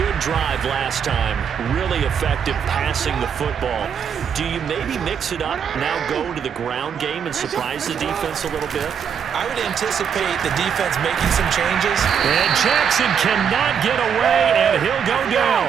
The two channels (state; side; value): quieter; left; 7.5 dB